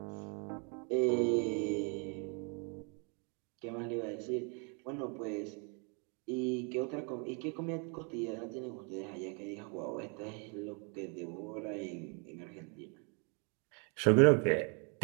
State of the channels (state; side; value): quieter; left; 36.5 dB